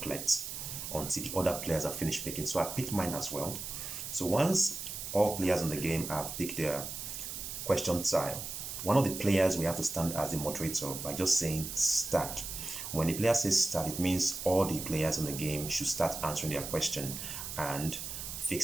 until the other players are finished picking. So I picked mine as well. So once all players in the game have picked their question tile, one of the players we have to stand as the moderator by just saying start. When the player says start, it means all the players in the game should start answering their question and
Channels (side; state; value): right; noise; hiss, 7 dB below the sound